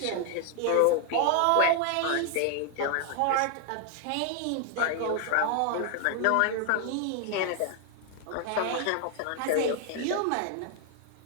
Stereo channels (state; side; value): different; both; correlation 0.00